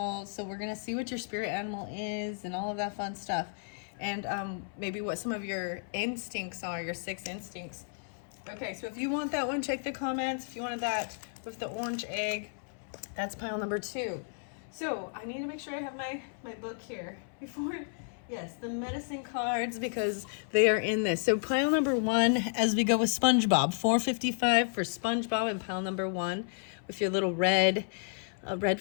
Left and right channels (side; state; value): right; silent; 56 dB below the other